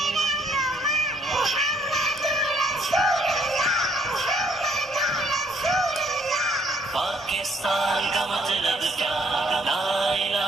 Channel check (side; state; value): both; normal; correlation 0.65